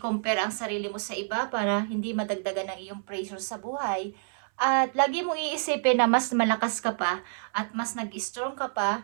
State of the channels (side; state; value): left; silent; 59 dB below the other